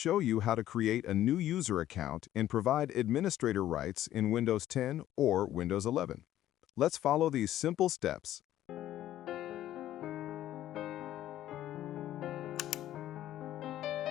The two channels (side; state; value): right; quieter; 12.9 dB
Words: you how to create a new user account and provide administrator rights in Windows 10 or Windows 11. Let's follow these simple steps.